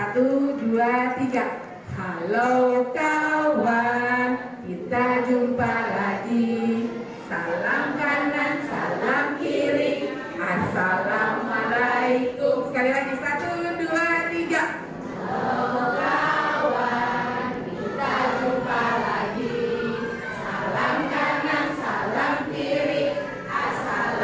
2, 3. Halo kawan, kita jumpa lagi. Salam kanan, salam kiri, assalamualaikum. Sekali lagi, 1, 2, 3. Halo kawan, kita jumpa lagi. Salam kanan, salam kiri,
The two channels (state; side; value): identical; both; correlation 1.00